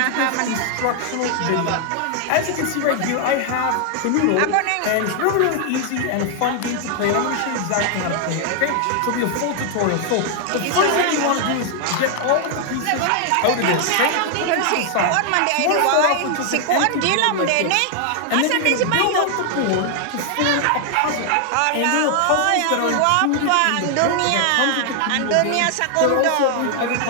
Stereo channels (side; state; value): both; different; correlation 0.00